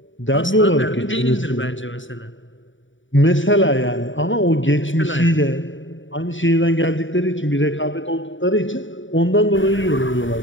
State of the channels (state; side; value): late; right; 0.56 ms